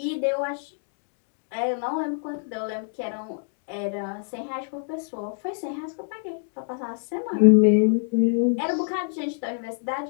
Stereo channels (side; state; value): right; silent; digital silence